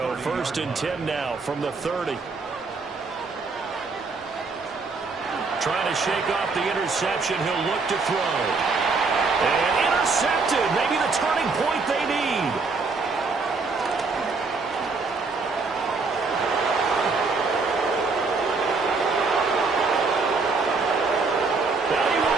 1st and 10 now from the 30. Trying to shake off the interception. He'll look to throw. And intercepted. Maybe the turning point they need. And he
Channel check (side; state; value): left; quieter; 4.2 dB